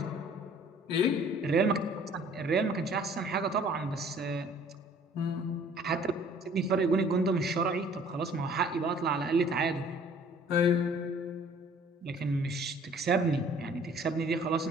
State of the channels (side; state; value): both; normal; correlation 0.54